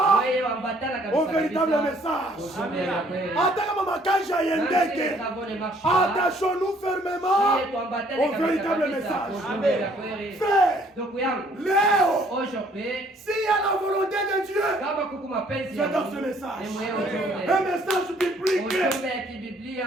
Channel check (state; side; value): normal; both; correlation 0.62